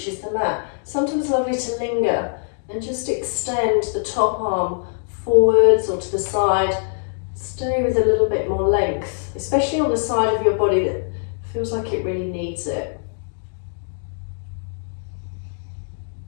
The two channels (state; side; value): silent; right; digital silence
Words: the mat. Sometimes lovely to linger and just extend the top arm forwards or to the side. Stay with a little bit more length, especially on the side of your body that feels like it really needs it.